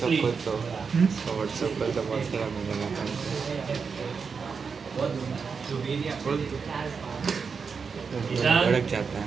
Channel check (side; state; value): left; quieter; 5.5 dB